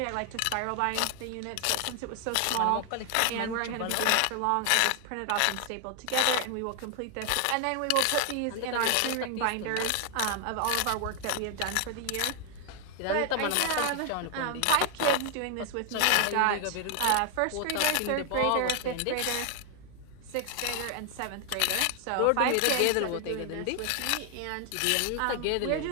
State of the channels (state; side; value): different; both; correlation 0.00